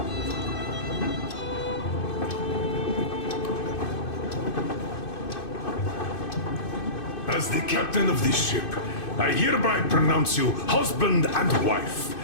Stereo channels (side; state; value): right; late; 2.6 ms